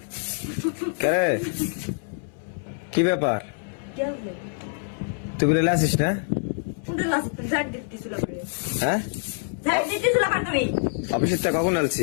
কে কি ব্যাপার? क्या हुआ? তুই বলে আসিস না? उन्हें लास्ट तक झाड़ देती सुला पड़े, হ্যাঁ झाड़ देती सुला पड़ तुम्हें। অফিসের তা কখন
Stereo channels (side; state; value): right; silent; 61 dB below the other